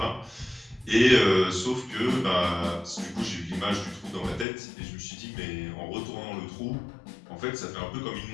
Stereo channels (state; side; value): drops out; right; at 4.5 s